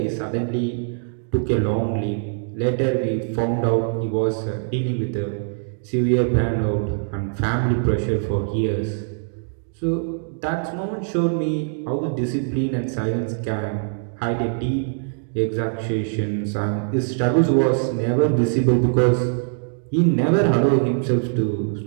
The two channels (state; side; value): silent; left; digital silence